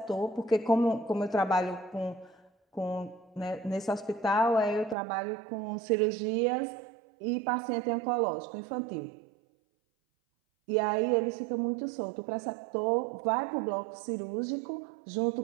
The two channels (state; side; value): drops out; left; at 5.0 s